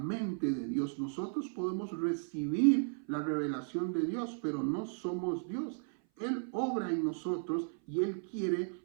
de Dios. Nosotros podemos recibir la revelación de Dios, pero no somos Dios. Él obra en nosotros y Él quiere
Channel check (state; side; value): silent; left; 54 dB below the other